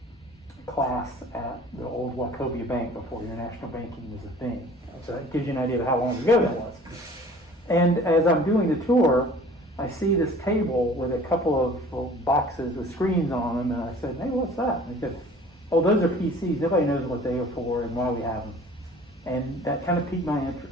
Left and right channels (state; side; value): normal; both; correlation 0.48